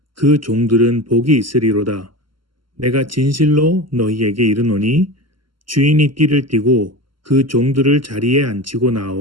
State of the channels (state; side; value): late; left; 0.73 ms